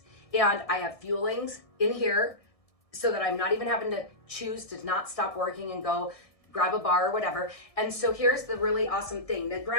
And I have fuelings in here so that I'm not even having to choose to not stop working and go grab a bar or whatever. And so here's the really awesome thing. Now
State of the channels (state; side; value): late; right; 1.6 ms